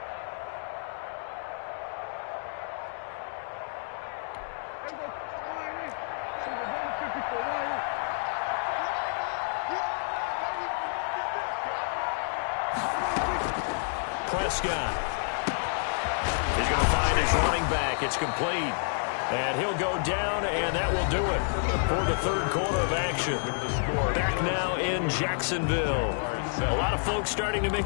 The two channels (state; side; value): silent; right; 58 dB below the other